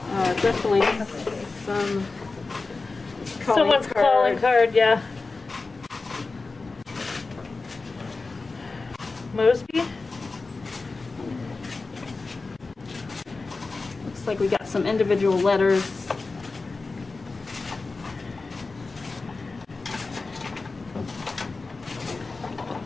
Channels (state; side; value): quieter; right; 3.8 dB